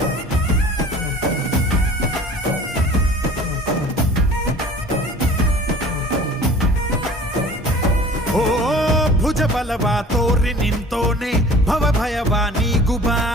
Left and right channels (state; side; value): normal; both; correlation 0.45